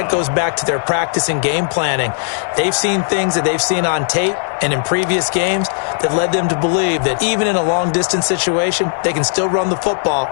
goes back to their practice and game planning. They've seen things that they've seen on tape and in previous games that led them to believe that even in a long-distance situation, they can still run the football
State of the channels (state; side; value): silent; right; digital silence